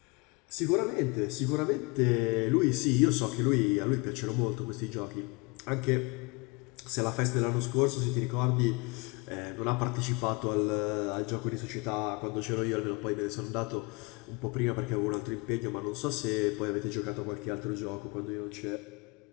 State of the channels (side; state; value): right; quieter; 27.9 dB